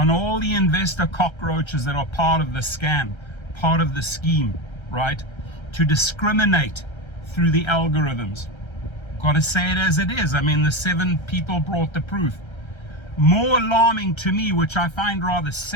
all the investor cockroaches that are part of the scam, part of the scheme, right? To discriminate through the algorithms. Got to say it as it is. I mean, the 7 people brought the proof. More alarming to me, which I find rather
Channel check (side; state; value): right; late; 1.3 ms